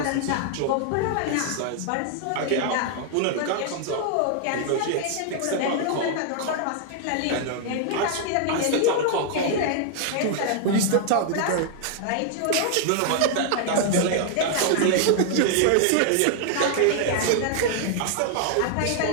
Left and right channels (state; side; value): different; both; correlation 0.00